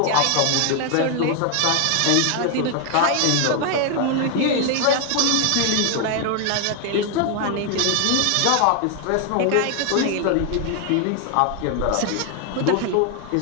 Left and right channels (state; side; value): different; both; correlation 0.01